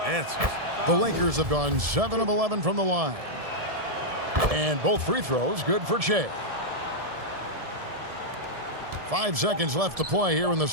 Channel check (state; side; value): late; left; 1.7 ms